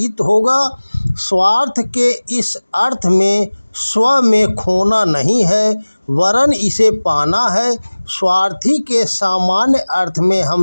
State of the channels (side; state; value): both; inverted; correlation -1.00